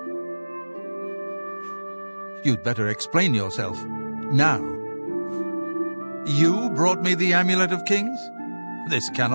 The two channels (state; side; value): inverted; both; correlation -1.00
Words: You'd better explain yourself. Now. You brought me the Amulet of Kings? This